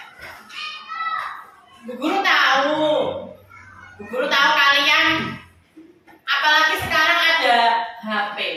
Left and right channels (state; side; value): identical; both; correlation 1.00